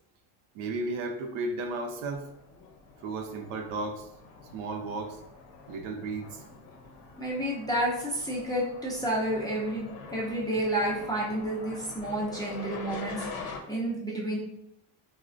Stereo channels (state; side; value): normal; both; correlation 0.17